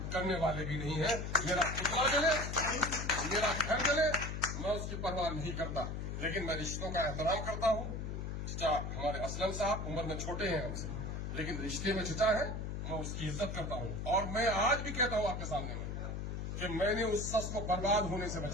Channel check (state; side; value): noise; left; hum, 4 dB below the sound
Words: کرنے والے بھی نہیں ہیں. میرا پتلا جلے، میرا گھر جلے، میں اس کی پرواہ نہیں کرتا. لیکن میں رشتوں کا احترام کرتا ہوں. چچا ہمارے اسلم صاحب عمر میں چھوٹے ہیں ہم سے، لیکن رشتے میں چچا ہے، میں اس کی عزت کرتا ہوں. اور میں آج بھی کہتا ہوں آپ کے سامنے میں کہ میں نے اس شخص کو برباد ہونے سے